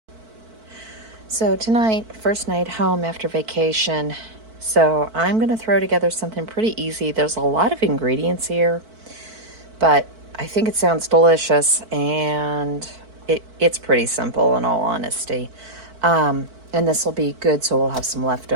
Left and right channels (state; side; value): late; left; 4.5 ms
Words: So tonight, first night home after vacation, So I'm going to throw together something pretty easy. There's a lot of ingredients here, but I think it sounds delicious, and it's pretty simple in all honesty. And this will be good, so we'll have some